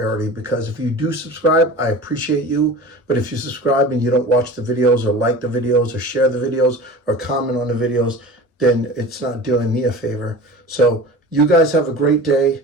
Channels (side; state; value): both; normal; correlation 0.36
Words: because if you do subscribe, I appreciate you. But if you subscribe and you don't watch the videos or like the videos or share the videos or comment on the videos, then it's not doing me a favor. So you guys have a great